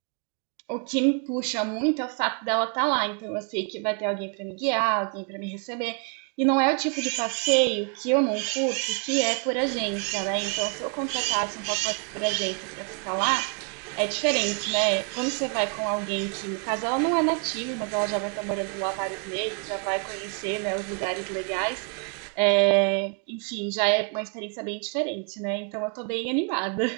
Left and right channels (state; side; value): quieter; left; 39.1 dB